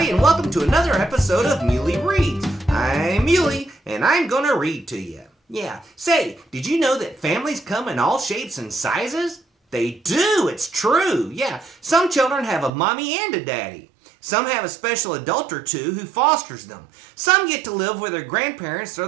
and welcome to another episode of Muley Reads. I'm Muley and I'm gonna read to you. Yeah, say, did you know that families come in all shapes and sizes? They do, it's true. Yeah, some children have a mommy and a daddy. Some have a special adult or two who fosters them. Some get to live with their grandparents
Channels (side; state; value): left; drops out; at 12.7 s